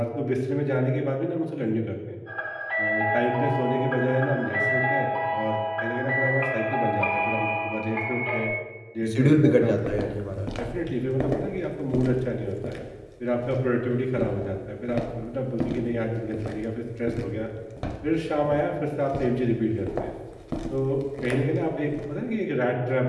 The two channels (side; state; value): both; identical; correlation 1.00